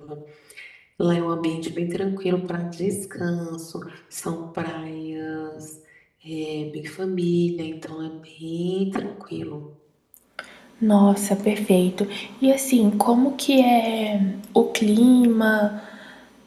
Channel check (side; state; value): both; identical; correlation 1.00